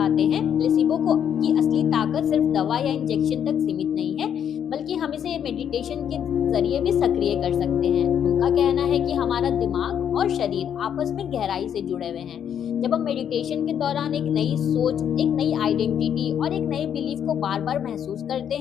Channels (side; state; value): right; quieter; 8.9 dB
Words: हैं प्लेसिबो को की असली ताकत सिर्फ दवा या इंजेक्शन तक सीमित नहीं है, बल्कि हम इसे मेडिटेशन के जरिए भी सक्रिय कर सकते हैं। उनका कहना है कि हमारा दिमाग और शरीर आपस में गहराई से जुड़े हुए हैं। जब हम मेडिटेशन के दौरान एक नई सोच, एक नई आइडेंटिटी और एक नए बिलीफ को बार बार महसूस करते